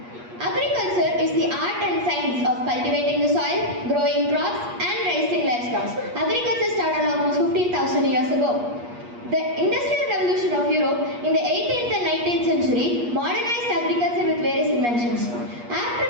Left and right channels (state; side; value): late; left; 8.4 ms